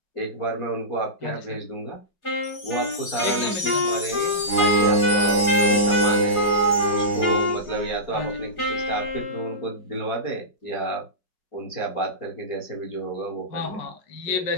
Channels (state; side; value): late; right; 4.9 ms